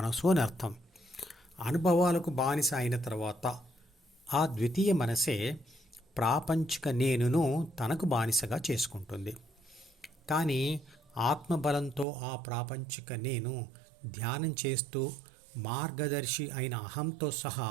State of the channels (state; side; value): drops out; left; at 12.1 s